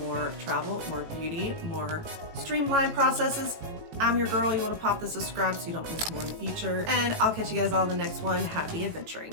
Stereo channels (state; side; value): late; left; 18 ms